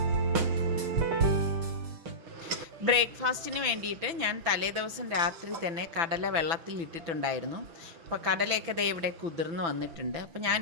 ബ്രേക്ക്ഫാസ്റ്റിന് വേണ്ടിയിട്ട് ഞാൻ തലേ ദിവസം രാത്രി തന്നെ കടല വെള്ളത്തിൽ ഇട്ടിട്ടുണ്ടായിരുന്നു. അപ്പോൾ കടലയൊക്കെ ദേ ഇവിടെ കുതിർന്ന് വന്നിട്ടുണ്ട്. അപ്പോൾ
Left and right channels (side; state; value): left; late; 6.0 ms